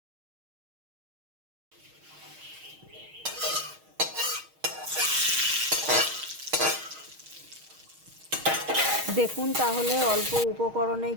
দেখুন তাহলে অল্প উপকরণে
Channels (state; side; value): late; left; 6.4 ms